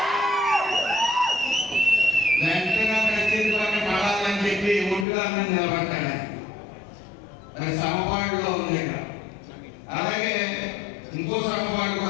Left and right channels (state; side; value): drops out; right; at 5.1 s